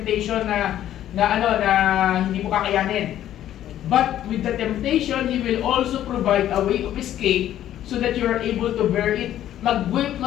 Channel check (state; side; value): quieter; right; 11.9 dB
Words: na hindi mo kakayanin. But with the temptation, He will also provide a way of escape so that you are able to bear it.